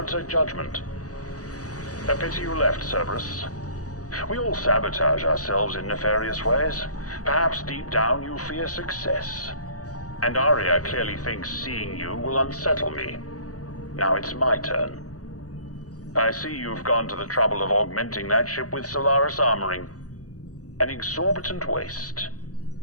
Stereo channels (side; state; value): right; late; 0.66 ms